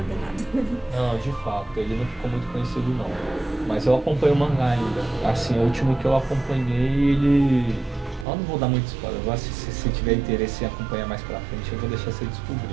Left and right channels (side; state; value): left; drops out; at 8.2 s